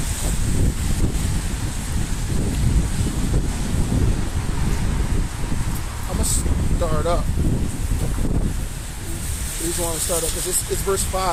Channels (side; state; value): both; identical; correlation 1.00